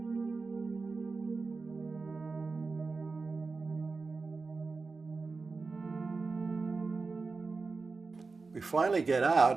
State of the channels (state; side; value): quieter; left; 4.2 dB